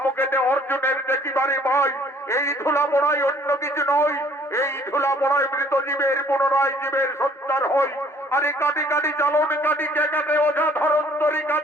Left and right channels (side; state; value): both; normal; correlation 0.58